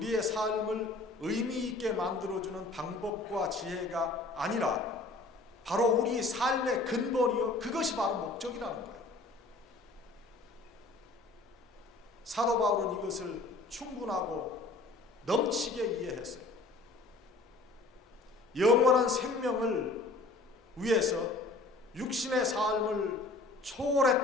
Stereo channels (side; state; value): right; quieter; 3.2 dB